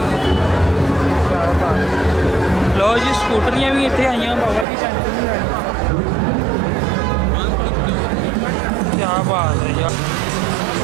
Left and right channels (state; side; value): drops out; left; at 4.7 s